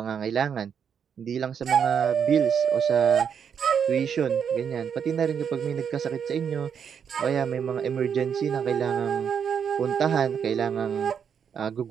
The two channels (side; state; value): left; quieter; 7.5 dB